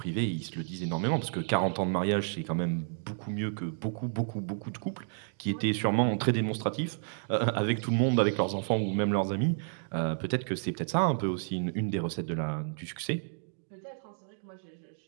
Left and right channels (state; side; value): silent; left; digital silence